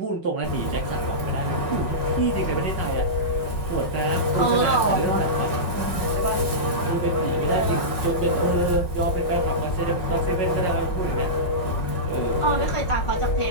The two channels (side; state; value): right; late; 5.4 ms